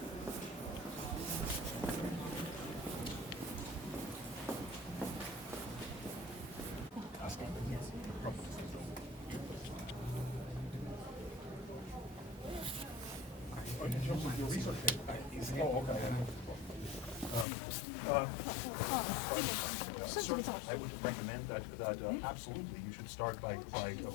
Certainly, I would recommend that absolutely you should start by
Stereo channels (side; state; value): right; drops out; at 17.4 s